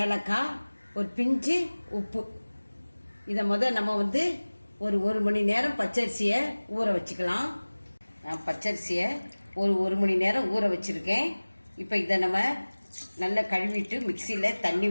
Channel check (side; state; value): both; inverted; correlation -1.00